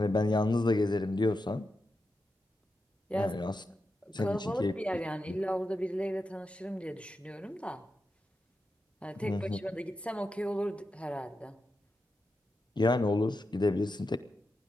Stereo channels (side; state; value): both; normal; correlation 0.88